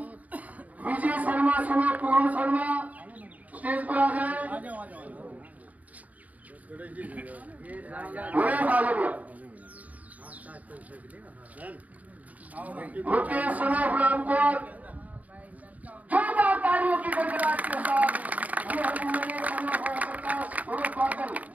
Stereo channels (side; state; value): left; late; 0.073 ms